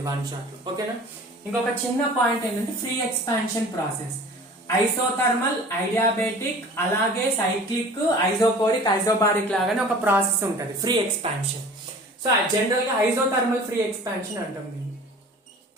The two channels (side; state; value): both; normal; correlation 0.44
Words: వన్ షాట్ లో. ఓకేనా. ఇంకొక చిన్న పాయింట్ ఏంటంటే ఫ్రీ ఎక్స్పాన్షన్ ప్రాసెస్, ఐసోథర్మల్, ఐడియాబెటిక్, అలాగే సైక్లిక్, ఐసోకోరిక్, ఐసోబారిక్ లాగానే ఒక ప్రాసెస్ ఉంటుంది ఫ్రీ ఎక్స్పాన్షన్. సో జనరల్ గా ఐసోథర్మల్ ఫ్రీ ఎక్స్పాన్షన్ అంటాం దీన్ని.